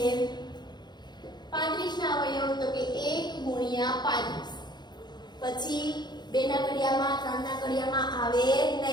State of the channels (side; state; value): right; late; 0.21 ms